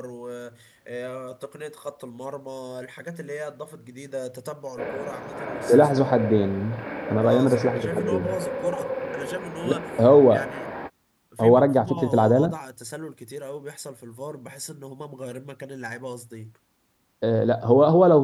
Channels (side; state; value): both; identical; correlation 1.00